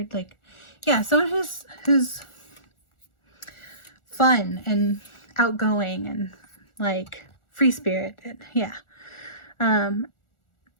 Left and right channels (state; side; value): late; right; 1.4 ms